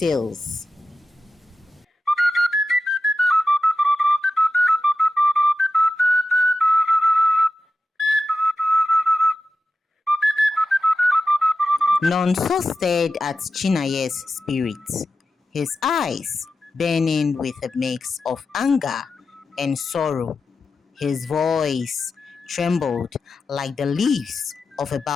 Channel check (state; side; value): normal; both; correlation 0.91